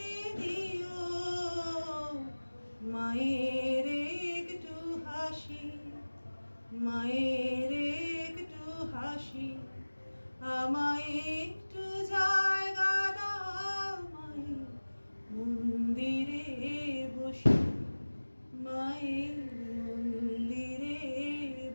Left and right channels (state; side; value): inverted; both; correlation -1.00